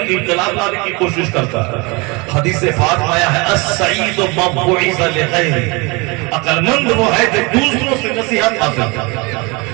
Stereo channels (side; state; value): left; quieter; 27.3 dB